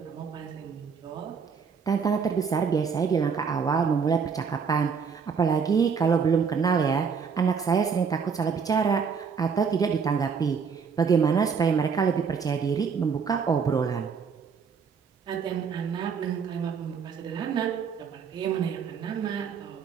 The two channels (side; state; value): left; quieter; 6.1 dB